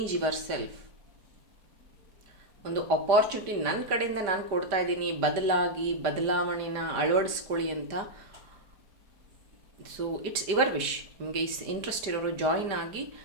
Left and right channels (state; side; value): late; left; 5.0 ms